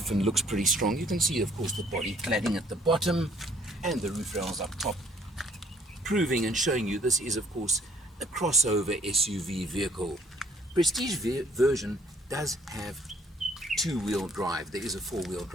and looks pretty strong. You can see, of course, the body cladding at the bottom and the roof rails up top, proving and showing you this is, of course, a crossover SUV vehicle. Prestige version does have two-wheel drive. There is a four-wheel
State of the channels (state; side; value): normal; both; correlation 0.62